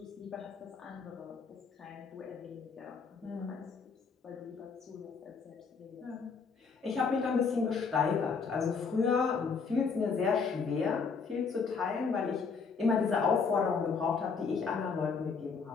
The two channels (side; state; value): right; quieter; 5.3 dB